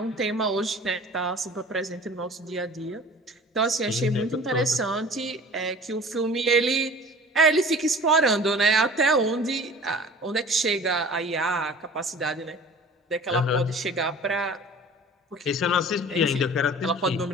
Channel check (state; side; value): normal; both; correlation 0.44